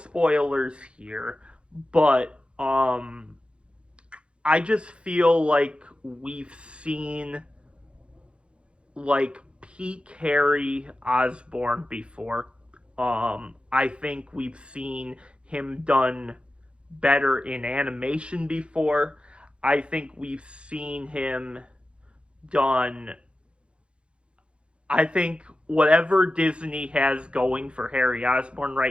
here, but I just feel like we've seen like peak Harry Osborn before. I think we've seen him done better in animation before. I think we've seen him done. I think whatever Disney has going for Harry Osborn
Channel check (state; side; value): late; left; 0.058 ms